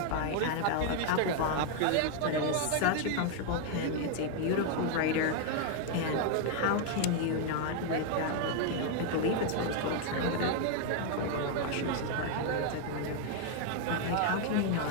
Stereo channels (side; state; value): both; different; correlation 0.00